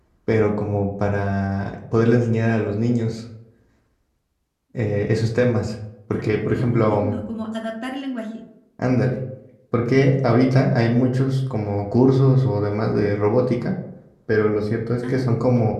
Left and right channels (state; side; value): identical; both; correlation 1.00